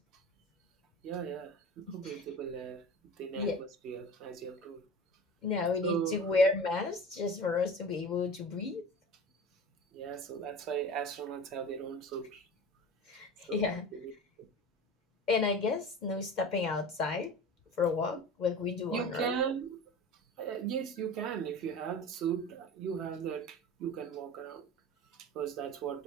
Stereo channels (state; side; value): normal; both; correlation 0.35